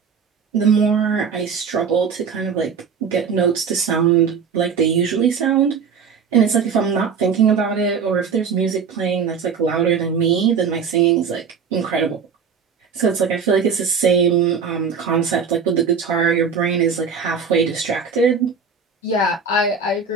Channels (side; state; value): left; quieter; 6.0 dB